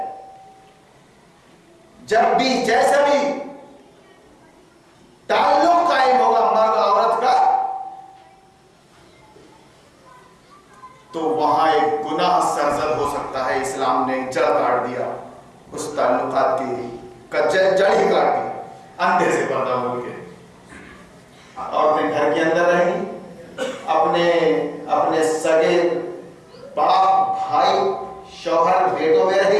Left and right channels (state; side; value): identical; both; correlation 1.00